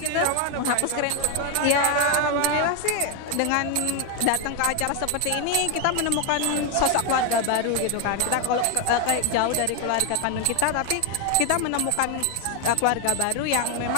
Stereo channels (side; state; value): both; different; correlation 0.01